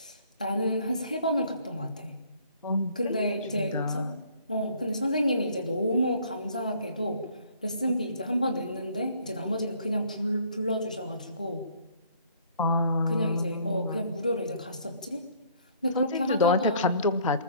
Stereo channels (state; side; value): inverted; both; correlation -0.58